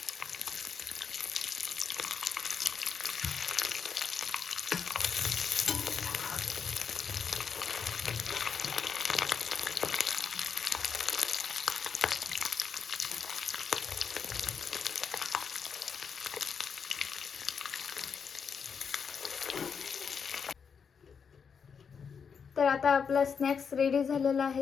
तर आता आपला स्नॅक्स रेडी झालेला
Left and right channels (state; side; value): quieter; right; 6.4 dB